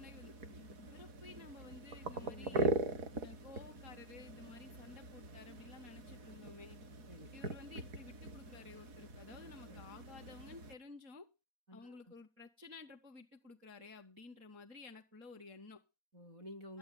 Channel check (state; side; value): late; left; 4.1 ms